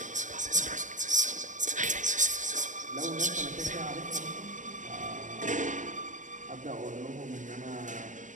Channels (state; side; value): late; left; 0.37 ms